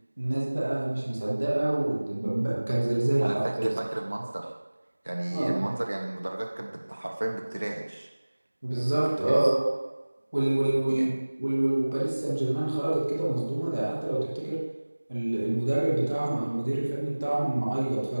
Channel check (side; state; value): both; inverted; correlation -1.00